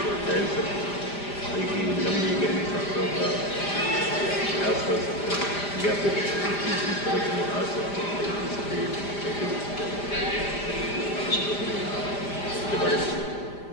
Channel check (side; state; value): right; late; 5.0 ms